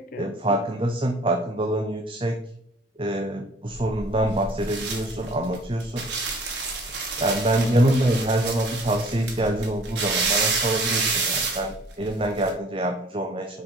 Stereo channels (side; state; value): both; normal; correlation 0.52